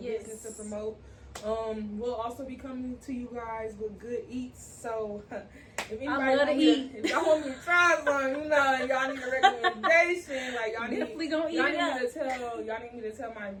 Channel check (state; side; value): identical; both; correlation 1.00